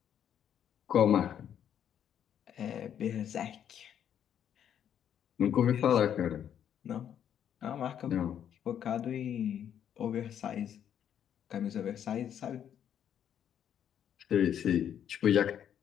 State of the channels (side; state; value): right; quieter; 9.4 dB